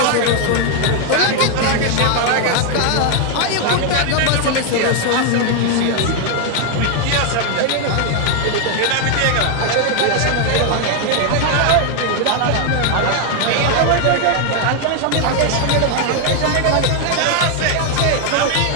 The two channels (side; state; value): both; different; correlation 0.00